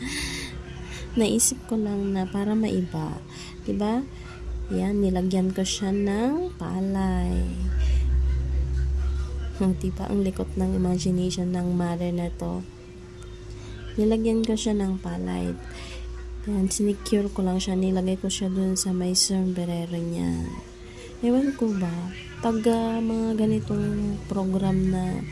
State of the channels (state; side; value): identical; both; correlation 1.00